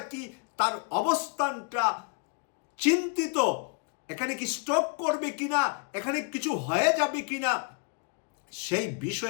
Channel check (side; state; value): right; quieter; 35.0 dB